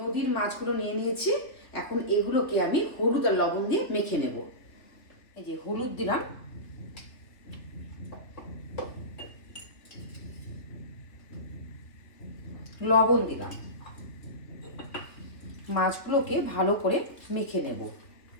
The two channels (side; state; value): right; late; 3.3 ms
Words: মাছগুলো নিয়ে নিয়েছি, এখন এগুলোকে আমি হলুদ আর লবণ দিয়ে মেখে নেব। এই যে হলুদ দিলাম, লবণ দিলাম, মাছগুলোকে ভালো করে মেখে নেব।